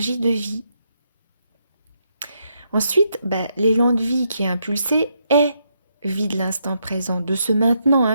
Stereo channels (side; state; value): both; inverted; correlation -0.78